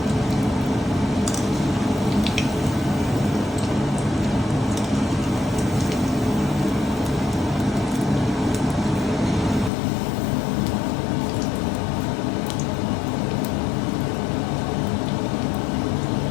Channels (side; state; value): right; drops out; at 9.7 s